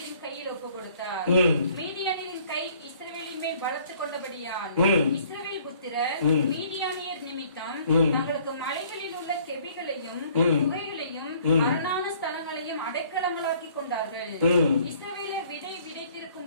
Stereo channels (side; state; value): both; inverted; correlation -0.57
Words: கையில் ஒப்புக் கொடுத்தார். மீதியானியரின் கை இஸ்ரவேலின் மேல் பலத்து கொண்டபடியால் இஸ்ரவேல் புத்திரர் மீதியானியர் நிமித்தம் தங்களுக்கு மலைகளில் உள்ள கெபிகளையும் குகைகளையும் அரணான ஸ்தலங்களையும் அடைக்கலங்களாக்கி கொண்டார்கள். இஸ்ரவேலர் விதை